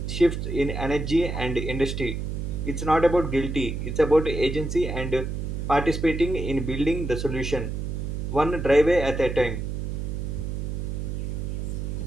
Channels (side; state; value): right; noise; hum, 3 dB below the sound